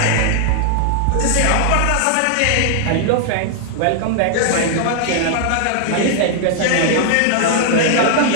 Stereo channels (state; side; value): different; both; correlation -0.01